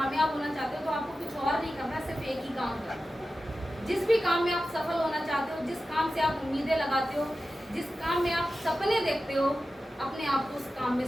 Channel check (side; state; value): both; normal; correlation 0.93